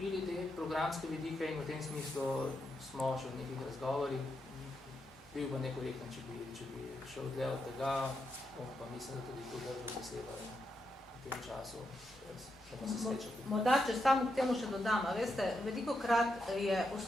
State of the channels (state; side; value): normal; both; correlation 0.83